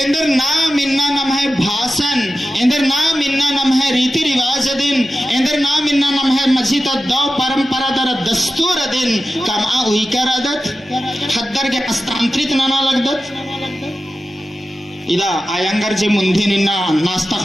नाम इन्ना नम है भाषण, इंदर नाम इन्ना नम है रीति रिवाज दिन, इंदर नाम इन्ना नम है मस्जिद दौ परंपरा दर दस्तूर दिन कमा उइकर अदत हद्दर के हस्तांतरित नाना लगदत इदा आयंगर जे मुंधी निन्ना नास्ता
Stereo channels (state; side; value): normal; both; correlation 0.93